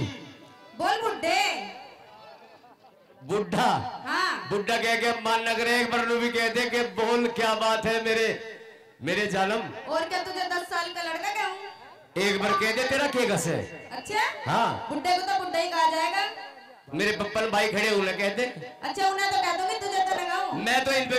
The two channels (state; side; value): identical; both; correlation 1.00